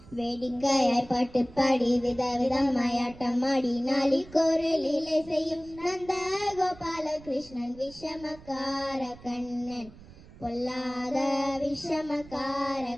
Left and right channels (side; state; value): right; noise; rumble, 20 dB below the sound